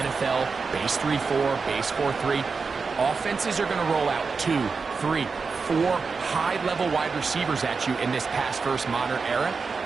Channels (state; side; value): quieter; left; 4.8 dB